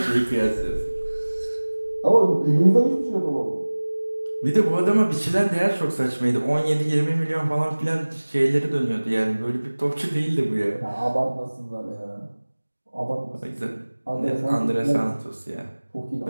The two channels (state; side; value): inverted; both; correlation -1.00